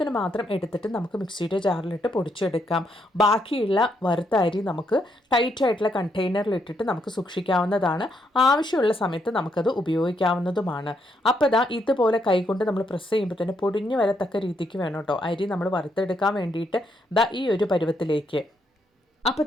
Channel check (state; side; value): normal; both; correlation 0.76